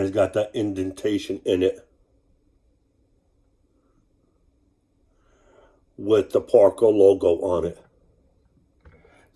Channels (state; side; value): identical; both; correlation 1.00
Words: got that indentation in it with the Parker logo on it.